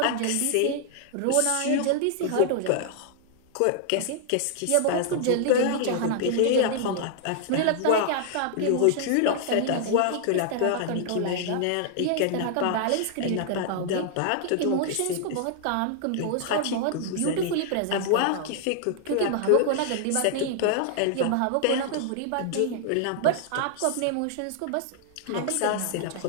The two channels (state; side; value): different; both; correlation -0.01